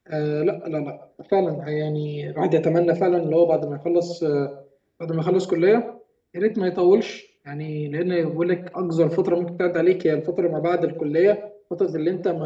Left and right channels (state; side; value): identical; both; correlation 1.00